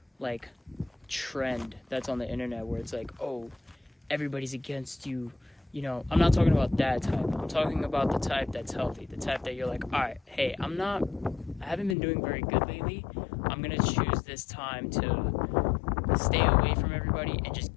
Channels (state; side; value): drops out; right; at 12.0 s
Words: trend that's on the internet where it's like, oh, everybody's against you. You know, I'm not talking about that type. I'm talking about the type that's healthy, the type that you're like, all right, hey, I haven't been doing very good lately. I'm going to choose this time to stay away from everybody and just